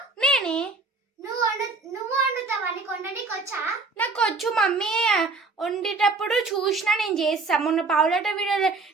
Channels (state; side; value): quieter; left; 3.9 dB